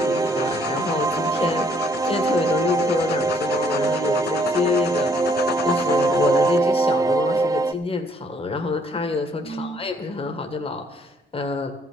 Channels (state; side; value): normal; both; correlation 0.65